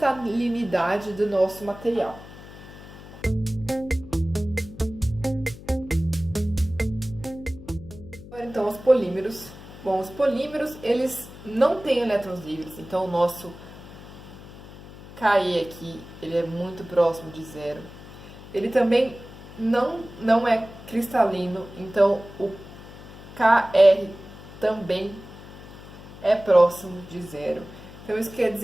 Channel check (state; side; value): noise; left; hum, 16 dB below the sound